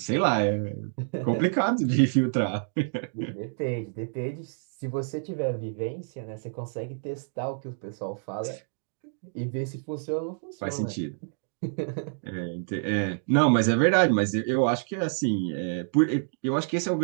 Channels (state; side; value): silent; left; digital silence